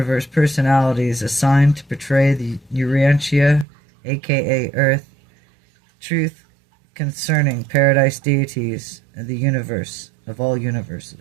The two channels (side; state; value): left; drops out; at 3.7 s